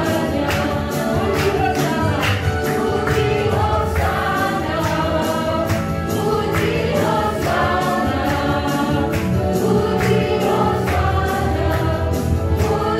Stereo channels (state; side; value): identical; both; correlation 1.00